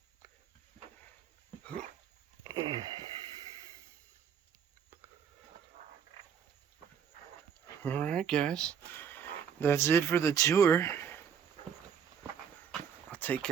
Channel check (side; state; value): left; quieter; 7.7 dB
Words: Alright guys, that's it for the tour. I'll take